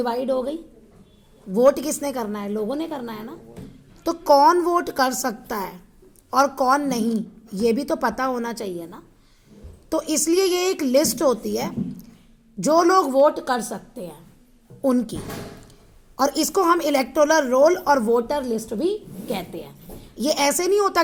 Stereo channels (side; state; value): both; identical; correlation 1.00